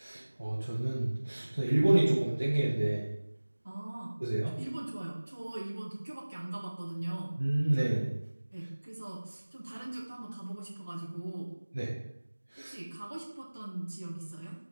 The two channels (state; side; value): inverted; both; correlation -1.00